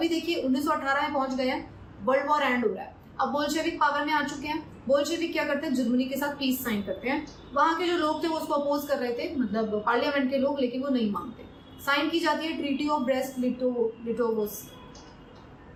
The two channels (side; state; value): both; identical; correlation 1.00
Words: देखिए 1918 में पहुंच गए हैं, वर्ल्ड वॉर एंड हो रहा है, अब बोल्शेविक पावर में आ चुके हैं। बोल्शेविक क्या करते हैं, जर्मनी के साथ पीस साइन करते हैं। वहां के जो लोग थे वो उसको अपोज कर रहे थे, मतलब पार्लियामेंट के लोग, लेकिन वो नहीं मानते। साइन की जाती है treaty of Brest Litovsk